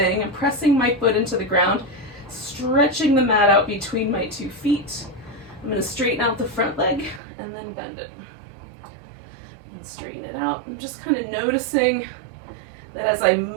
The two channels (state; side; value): drops out; left; at 7.2 s